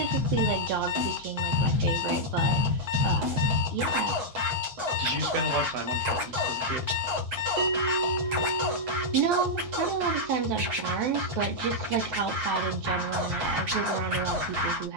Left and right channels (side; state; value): left; late; 8.1 ms